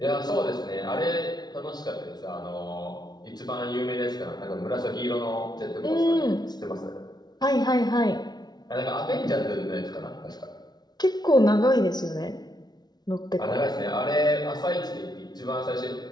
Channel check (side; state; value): right; late; 0.19 ms